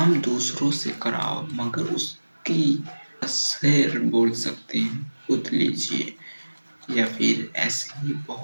दूसरों से कराओ मगर उसकी शेर बोल सकते हैं खुद लीजिए। या फिर ऐसे ही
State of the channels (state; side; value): inverted; both; correlation -1.00